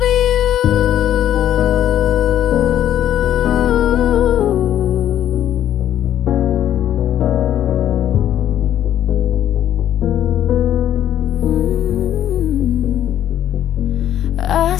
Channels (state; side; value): quieter; right; 11.2 dB